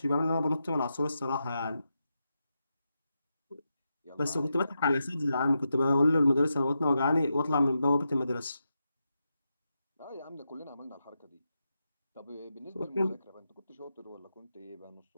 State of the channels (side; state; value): both; inverted; correlation -0.87